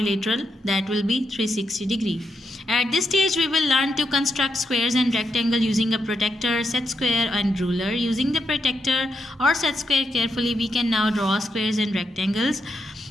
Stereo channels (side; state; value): both; normal; correlation 0.83